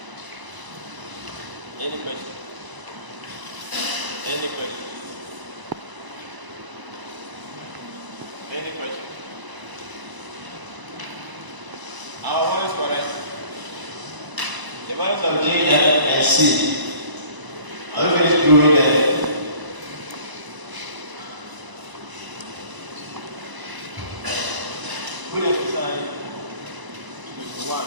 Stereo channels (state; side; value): late; left; 1.0 ms